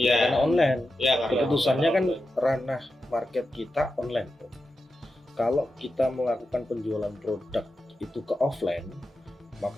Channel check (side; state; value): both; normal; correlation 0.90